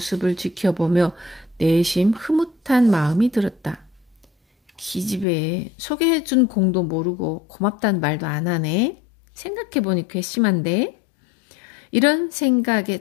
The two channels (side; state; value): right; drops out; at 5.2 s